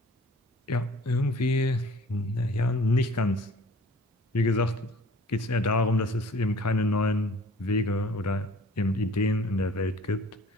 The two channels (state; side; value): normal; both; correlation 0.50